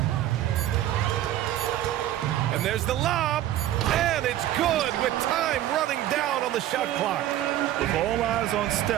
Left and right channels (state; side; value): quieter; left; 13.0 dB